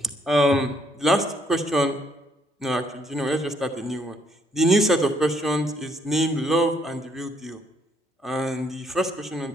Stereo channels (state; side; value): normal; both; correlation 0.69